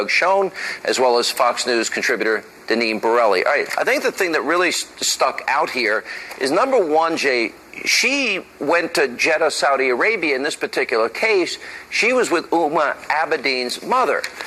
Schoen, as well as Fox News contributor Denise Borelli. All right, I think the thing that really stuck out here is, number one, Jay, she went to Jeddah, Saudi Arabia. In this particular case, she was with Huma Abedin's mother,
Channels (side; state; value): both; identical; correlation 1.00